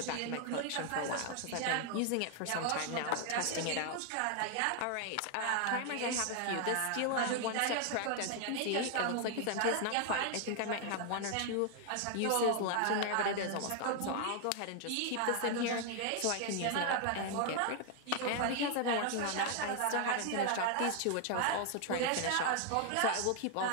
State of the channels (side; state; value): both; different; correlation 0.00